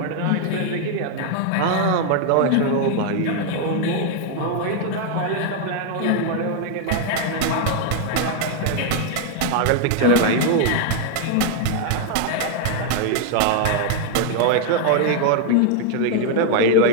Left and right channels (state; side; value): different; both; correlation 0.00